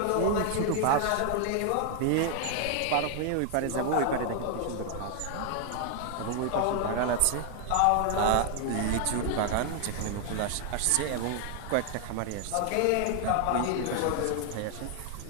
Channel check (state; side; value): different; both; correlation 0.00